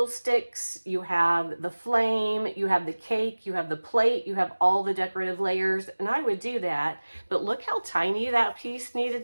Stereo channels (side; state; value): both; inverted; correlation -1.00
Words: you have the flame, you have the cake, you have the plate, you have all the decorative layers, and I would do that. But look how tiny that piece